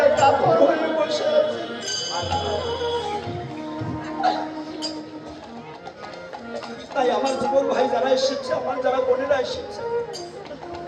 কাপড় হয়ে বসে আছি। তাই আমার যুবক ভাই যারা এসেছে, আমার যারা বোনেরা এসেছে,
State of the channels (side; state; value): both; identical; correlation 1.00